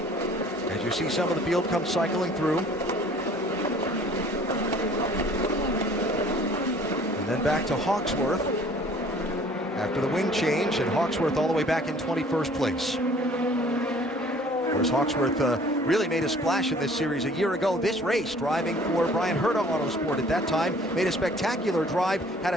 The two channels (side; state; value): both; normal; correlation 0.53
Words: you see some of the field come cycling through. And then back to Hawksworth after the wing change, and Hawksworth all the way back in 21st place. Of course, Hawksworth really made a splash in this series a year ago. This race, driving for Brian Herta Autosport at that time, made a spectacular drive, had